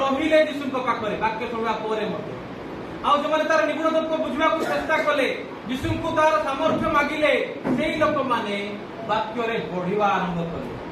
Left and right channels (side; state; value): both; identical; correlation 1.00